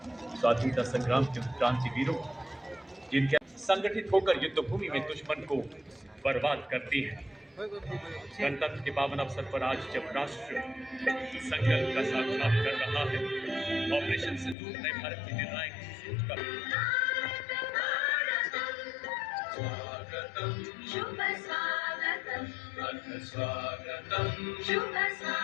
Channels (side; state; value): right; drops out; at 14.6 s